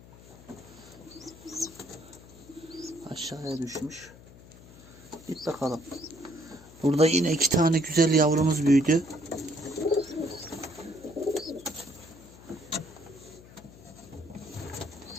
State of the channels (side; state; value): left; noise; hum, 20 dB below the sound